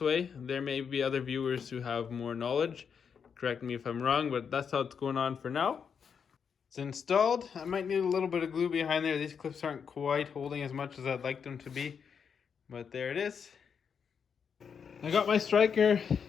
There may be other viewers who have more knowledge. Correct me if I'm wrong, but that's how it's going on for now. It's installed. I might need a little bit of glue behind there. These clips aren't quite holding as much as I'd like them to be, but there it is. I got my striker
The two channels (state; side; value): quieter; right; 6.8 dB